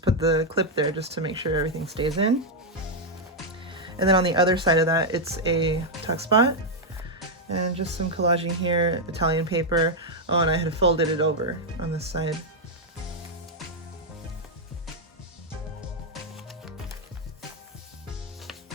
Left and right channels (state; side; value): normal; both; correlation 0.00